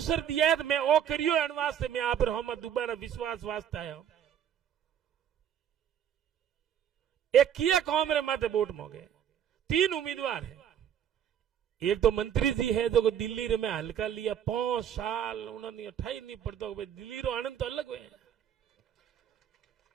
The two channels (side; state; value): left; quieter; 9.3 dB